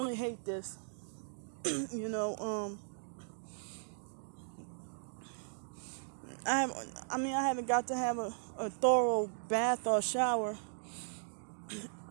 hate this. I haven't got to have a thorough bath or shower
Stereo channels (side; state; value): left; silent; digital silence